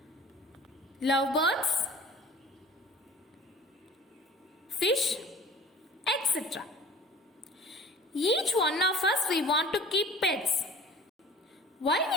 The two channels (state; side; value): normal; both; correlation 0.45